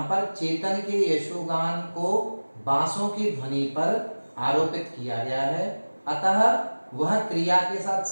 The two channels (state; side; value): inverted; both; correlation -1.00